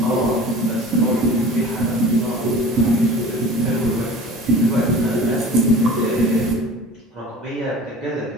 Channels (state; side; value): normal; both; correlation 0.40